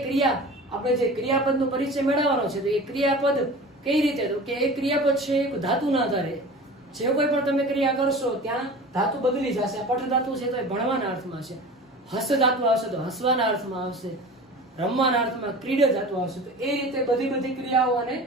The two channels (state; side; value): normal; both; correlation 0.37